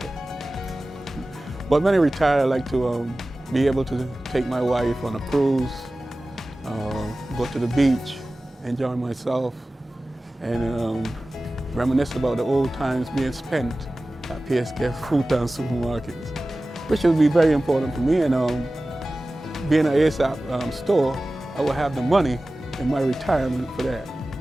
But when I retire, I'd like to be able to take my wife on a cruise, go to the beach, enjoy myself, and reminisce about the old times being spent at PSK Supermarkets, which would be very important for me. And being an ESOP store, I will have the money in my retirement for that.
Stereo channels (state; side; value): normal; both; correlation 0.96